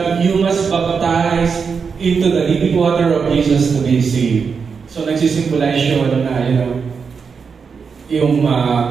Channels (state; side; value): quieter; left; 5.7 dB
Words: you must baptize into the living water of Jesus to be saved. So nagsisimbolize yun na, yung